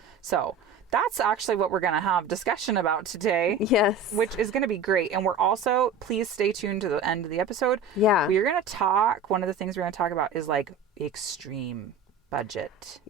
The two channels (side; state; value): left; quieter; 4.3 dB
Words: So that's actually what we're going to have discussion about today. Yes. Which is going to be great. And we're also, please stay tuned to the end of the episode. Yeah. We're going to talk, one of the things we're going to talk about is like extreme budget.